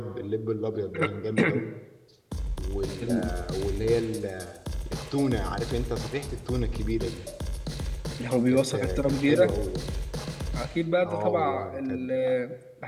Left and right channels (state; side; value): identical; both; correlation 1.00